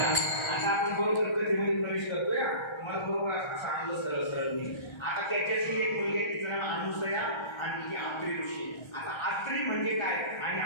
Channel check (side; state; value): right; late; 1.3 ms